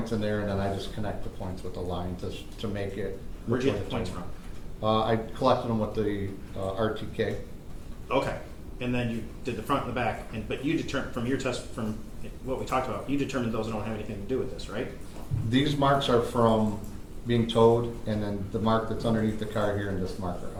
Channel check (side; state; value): both; identical; correlation 1.00